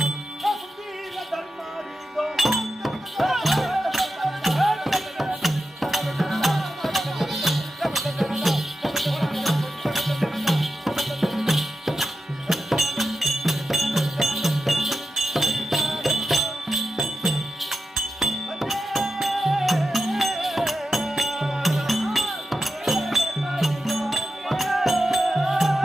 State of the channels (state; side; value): normal; both; correlation 0.90